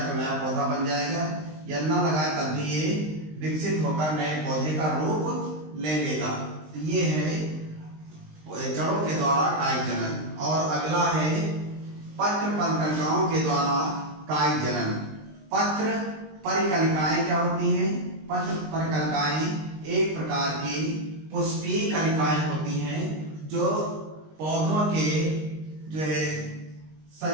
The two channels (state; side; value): late; left; 19 ms